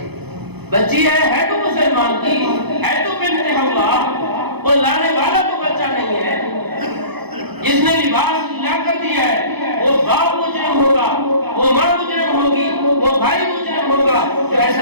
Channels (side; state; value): left; late; 0.98 ms